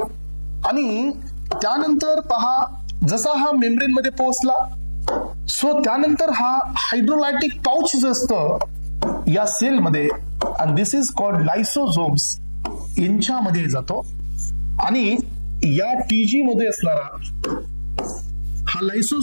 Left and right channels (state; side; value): inverted; both; correlation -1.00